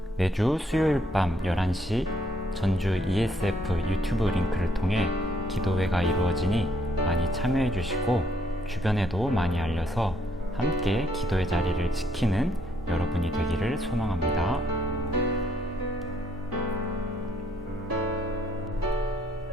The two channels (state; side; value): normal; both; correlation 0.70